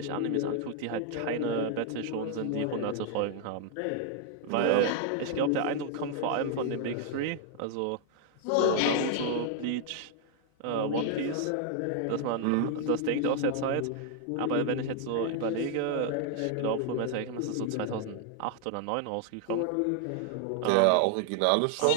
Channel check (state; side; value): different; both; correlation 0.00